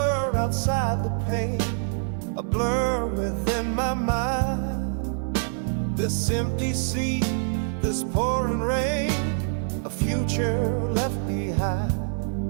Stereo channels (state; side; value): silent; left; digital silence